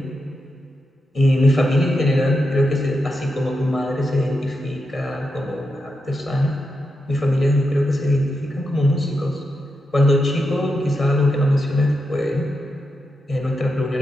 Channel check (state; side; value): normal; both; correlation 0.86